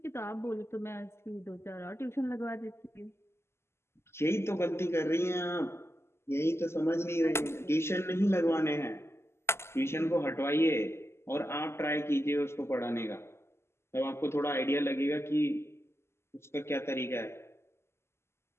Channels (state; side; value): late; right; 0.12 ms